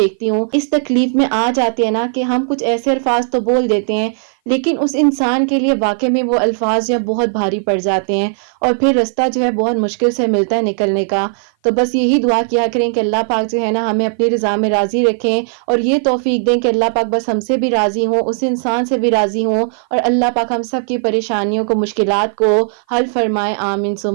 ہوں، اس تکلیف میں آ جاتے ہیں نا کہ ہم کچھ ایسے الفاظ تو بول دیتے ہیں، لیکن اس انسان کے لیے واقع میں وہ الفاظ جو بہت بھاری پڑ جاتے ہیں اور پھر رستہ جو ہے بہت مشکل سے ملتا ہے نکلنے کا۔ تو بس یہی دعا کیا کریں کہ اللہ پاک جو ہے نا ہمیں اپنی رضا میں راضی رکھیں اور یہ توفیق دیں کہ اللہ پاک بس ہم سے بھی راضی ہوں، اس انسان سے بھی راضی ہوں، اور اللہ پاک ہم سب کی پریشانیوں کو، مشکلات کو حل فرمائے، آمین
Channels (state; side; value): silent; left; 56 dB below the other